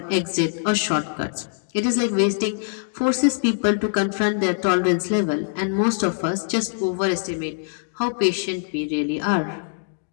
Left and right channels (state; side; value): silent; right; digital silence